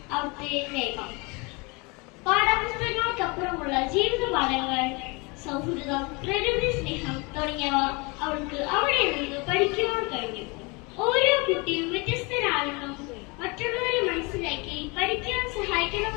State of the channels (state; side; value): quieter; right; 28.1 dB